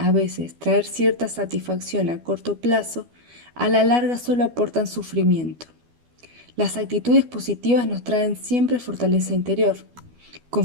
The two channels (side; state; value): left; late; 12 ms